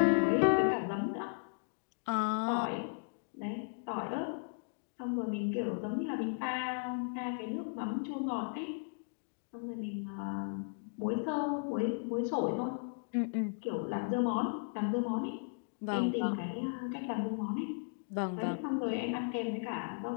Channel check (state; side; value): silent; right; digital silence